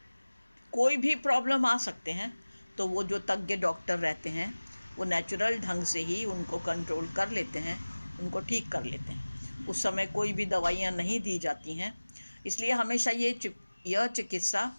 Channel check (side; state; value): both; inverted; correlation -1.00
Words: कोई भी प्रॉब्लम आ सकते हैं। तो वो जो तज्ञ डॉक्टर रहते हैं वो नेचुरल ढंग से ही उनको कंट्रोल कर लेते हैं, उनको ठीक कर लेते हैं। उस समय कोई भी दवाइयाँ नहीं दी जाती हैं। इसलिए हमेशा यह चिकित्सा